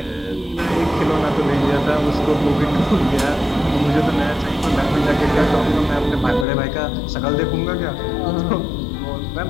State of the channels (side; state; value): right; drops out; at 6.5 s